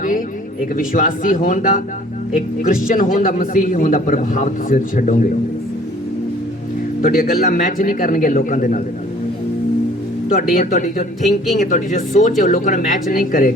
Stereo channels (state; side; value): normal; both; correlation 0.53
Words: एक विश्वासी होने का, एक क्रिश्चियन होने का, मसीही होने का प्रभाव तुसीं छड्डोगे। तुहाडीआं गल्लां मैच नहीं करनगे लोकां दे नाल। ਤੁਹਾਡੀ ਜੋ ਥਿੰਕਿੰਗ ਹੈ, ਤੁਹਾਡੀ ਜੋ ਸੋਚ ਹੈ, ਉਹ ਲੋਕਾਂ ਨਾਲ ਮੈਚ ਨਹੀਂ